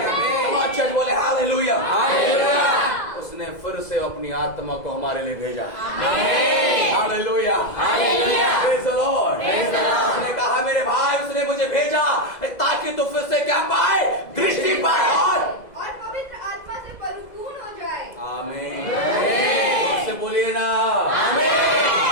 चर्च बोले हालेलुया। उसने फिर से अपनी आत्मा को हमारे लिए भेजा। हालेलुया। Praise the Lord. उसने कहा मेरे भाई, उसने मुझे भेजा ताकि तू फिर से क्या पाए? दृष्टि पाए और पवित्र आत्मा से परिपूर्ण हो जाए। आमीन। उससे बोलिए ना,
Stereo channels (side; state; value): right; late; 2.0 ms